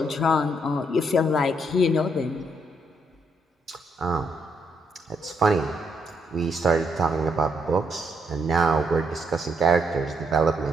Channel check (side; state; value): both; normal; correlation 0.75